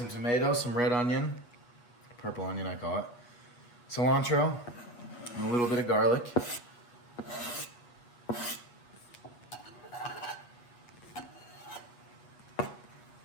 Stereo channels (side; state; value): right; late; 8.3 ms